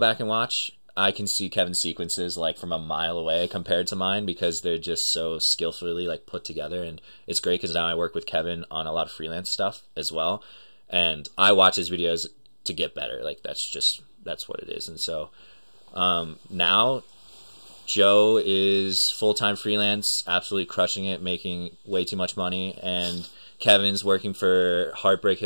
and watch, I can see Kevin's sequences like from a mile away compared to mine because they're just so skillfully like put together. And it's great because now I work with Kevin on a lot of freelance stuff as well. And I watch his videos to get better. Like that's what it is. And so now Joe is full-time freelance, absolutely crushing it, making way too much money, and Kevin's working for Heartbreak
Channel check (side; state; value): both; inverted; correlation -1.00